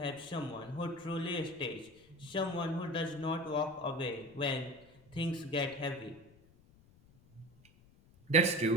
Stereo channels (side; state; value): left; noise; rumble, 27 dB below the sound